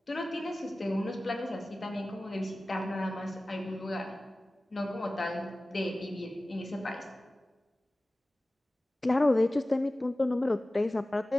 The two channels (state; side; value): normal; both; correlation 0.97